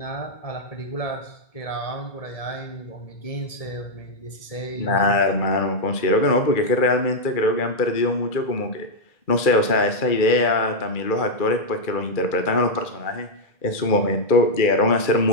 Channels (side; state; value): right; late; 2.3 ms